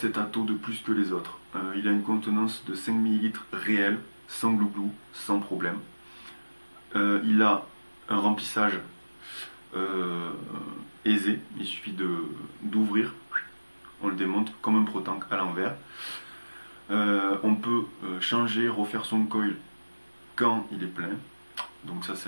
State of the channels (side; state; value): both; inverted; correlation -1.00